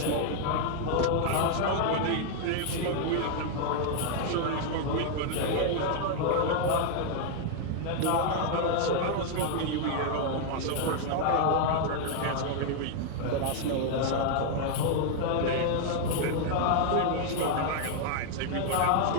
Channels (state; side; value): different; both; correlation 0.00